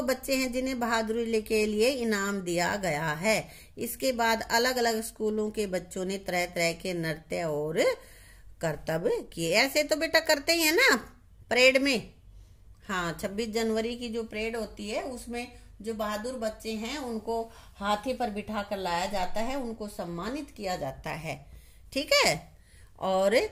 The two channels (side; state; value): both; identical; correlation 1.00